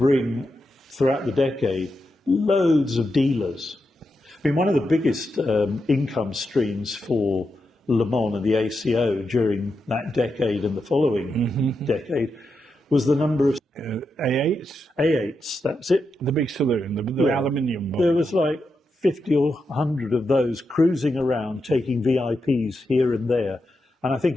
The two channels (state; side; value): normal; both; correlation 0.86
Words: throughout the decade, loads of dealers. I mean, one of the biggest income streams for Le Mans and the ACO during that decade and the following decade was the number of A8s? A8s, that's it. The big saloon, the aluminium one. There was like 50 or 100 of those cruising around, taking VIPs here and there. And I